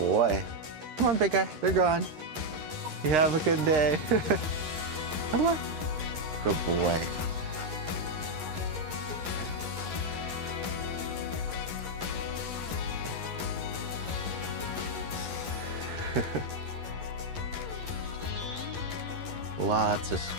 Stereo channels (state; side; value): late; left; 11 ms